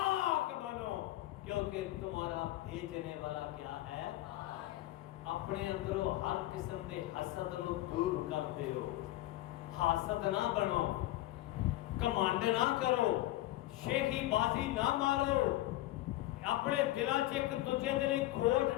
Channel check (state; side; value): quieter; right; 16.4 dB